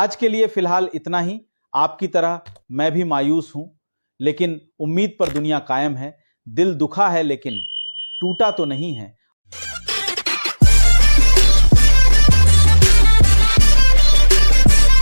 के लिए फिलहाल इतना ही. आपकी तरह मैं भी मायूस हूं, लेकिन उम्मीद पर दुनिया कायम है. दिल दुखा है लेकिन टूटा तो नहीं है.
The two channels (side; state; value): both; inverted; correlation -1.00